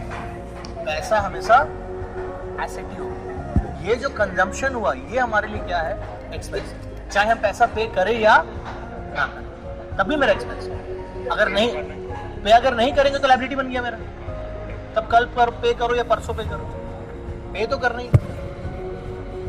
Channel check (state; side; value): identical; both; correlation 1.00